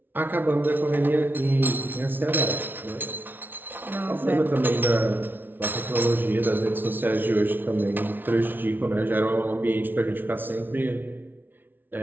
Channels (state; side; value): late; left; 0.095 ms